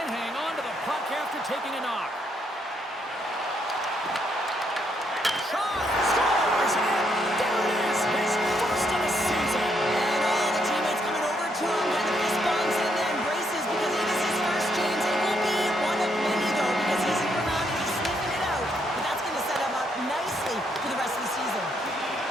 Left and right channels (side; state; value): both; normal; correlation 0.75